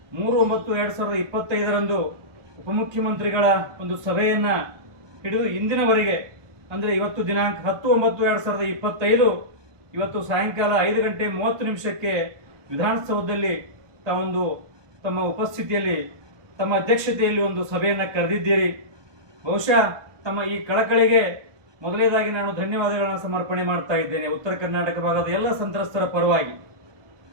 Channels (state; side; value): late; left; 1.2 ms